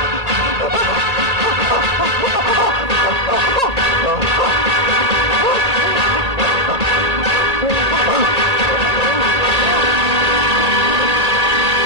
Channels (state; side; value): late; left; 1.8 ms